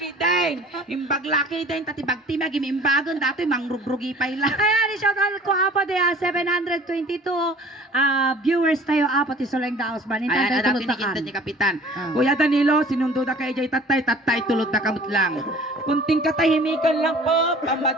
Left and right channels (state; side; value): normal; both; correlation 0.49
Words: din. Imbag laki din, tatibag timag, imimbagon, dati mangrugrugi pa ila. Ayan, shout out ko apo de 722 viewers tayo apo ti Soleng Daos ban. Ayan, Intay dati tulot nikinta takan. ni Kapitan. Ah. Kuya Danilo, sinundo na kay Jay tatay tulot na kamot lang. Kunting katahimikan lang po,